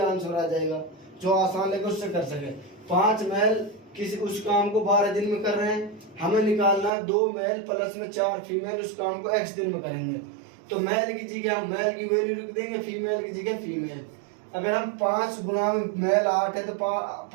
आ जाएगा जो आसान लगे उससे कर सके। 5 मेल किसी उस काम को 12 दिन में कर रहे हैं, हमें निकालना 2 मेल प्लस में 4 फीमेल उस काम को x दिन में करेंगे। तो मेल की जगह हम मेल की वैल्यू लिख देंगे, फीमेल की जगह फीमेल। अगर हम 5 गुणा में मेल 8 है तो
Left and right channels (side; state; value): left; drops out; at 6.9 s